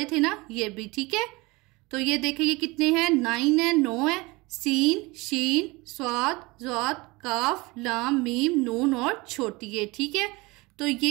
थे ना, ये भी, ठीक है। तो ये देखिए ये कितने हैं, 9 है, 9 है, सीन, शीन, स्वाद, ज़ाद, काफ, लाम, मीम, नून और छोटी है, ठीक है। तो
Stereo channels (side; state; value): left; quieter; 23.7 dB